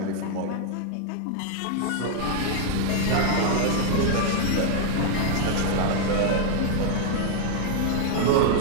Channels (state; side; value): different; both; correlation 0.00